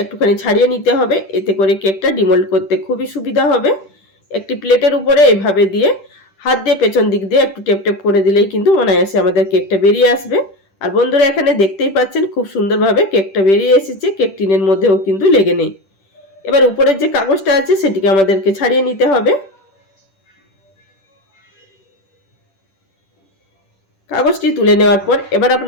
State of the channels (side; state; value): right; late; 10 ms